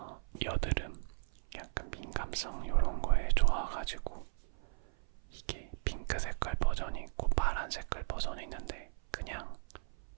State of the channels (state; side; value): silent; left; 54 dB below the other